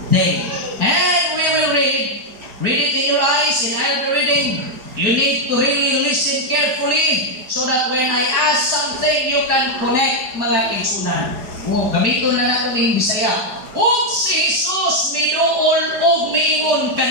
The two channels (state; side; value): late; left; 4.8 ms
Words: day. And we will read it in your eyes, in our reading. You need to really listen carefully so that when I ask something, you can connect mga kaigsunan. Gamiton na natin ng Bisaya. Og si Jesus minuol og miingon